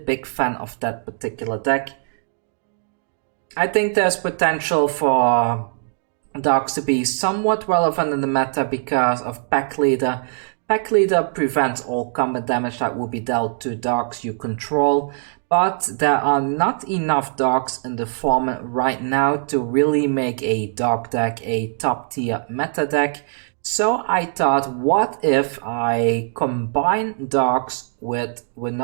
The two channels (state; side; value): silent; left; digital silence